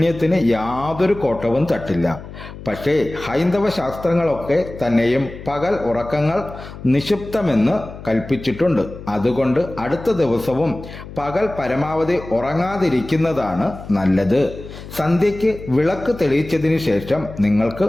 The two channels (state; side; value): noise; left; hum, 14 dB below the sound